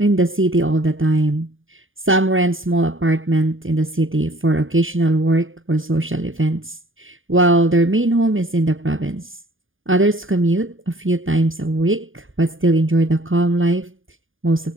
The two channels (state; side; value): late; left; 0.58 ms